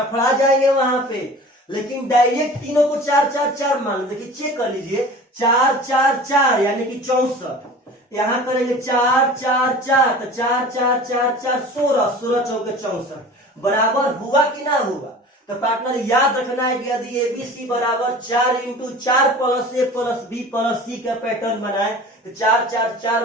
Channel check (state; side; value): normal; both; correlation 0.40